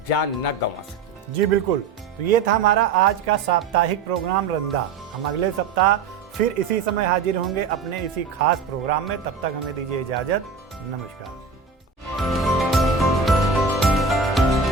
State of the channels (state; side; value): quieter; left; 5.1 dB